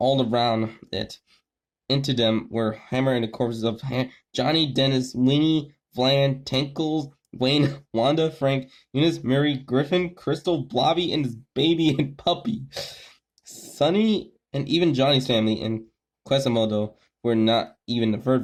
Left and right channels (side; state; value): both; identical; correlation 1.00